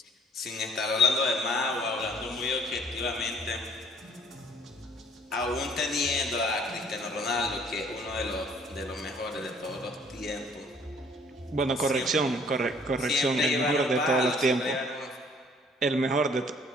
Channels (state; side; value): normal; both; correlation 0.58